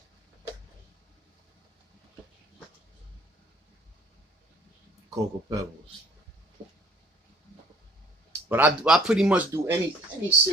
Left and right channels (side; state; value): both; normal; correlation 0.54